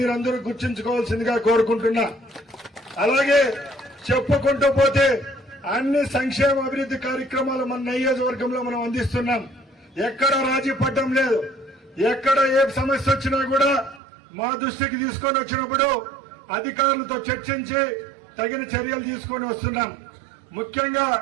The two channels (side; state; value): left; drops out; at 14.0 s